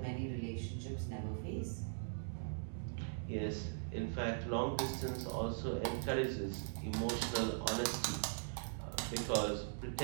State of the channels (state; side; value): silent; left; digital silence